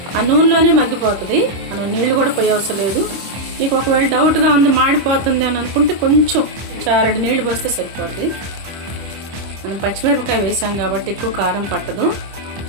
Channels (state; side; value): late; left; 26 ms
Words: ఆ నూనెలోనే మగ్గిపోతుంది, మనం నీళ్ళు కూడా పోయే అవసరం లేదు. మీకు ఒకవేళ డౌట్గా ఉంది మాడిపోతుంది అని అనుకుంటే కొంచెం 2 నీళ్ళు పోస్తే సరిపోతుంది. మనం పచ్చిమిరపకాయ వేసాం కాబట్టి ఎక్కువ కారం పట్టదు,